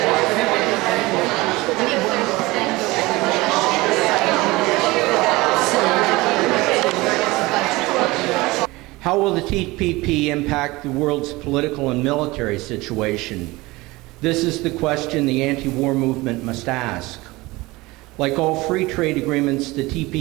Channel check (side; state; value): left; quieter; 21.3 dB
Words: How will the TPP impact the world's political and military situation? This is the question the anti-war movement must ask. Like all free trade agreements, the